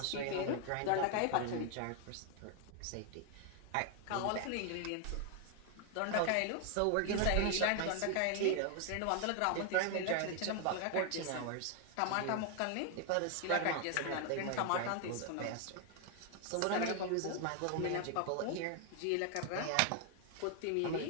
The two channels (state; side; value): different; both; correlation 0.00